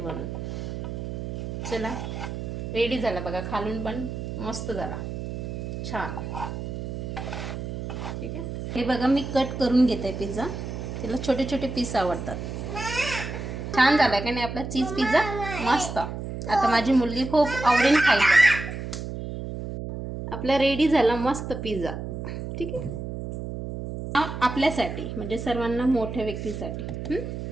चला, रेडी झाला बघा. खालून पण मस्त झाला, छान. ठीक आहे. हे बघा, मी कट करून घेते पिझ्झा. तिला छोटे छोटे पीस आवडतात. छान झाला का नाही आपला चीज पिझ्झा? मस्त. आता माझी मुलगी खूप आवडीने खाईल बघा. आपला रेडी झाला मस्त पिझ्झा. ठीक आहे. आपल्यासाठी, म्हणजे सर्वांना, मोठ्या व्यक्तीसाठी.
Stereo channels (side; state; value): right; noise; hum, 6 dB below the sound